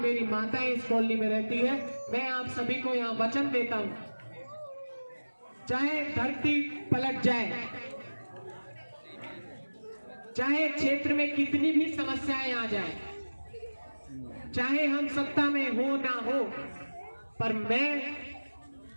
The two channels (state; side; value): inverted; both; correlation -1.00